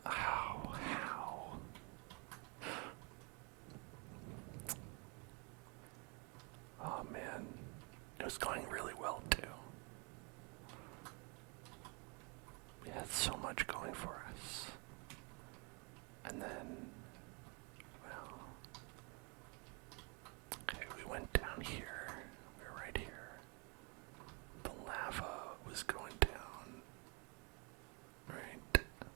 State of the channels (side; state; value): left; quieter; 31.7 dB